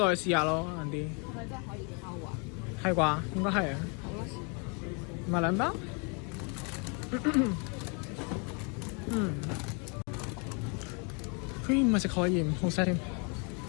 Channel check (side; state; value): right; quieter; 35.0 dB